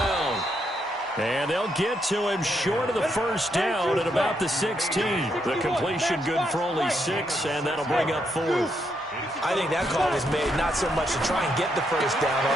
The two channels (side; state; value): both; normal; correlation 0.78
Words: And they'll get to him short of the first down at about the 16. The completion good for only 6, and that'll bring up 4th. I think that call was made not so much to try and get the first down,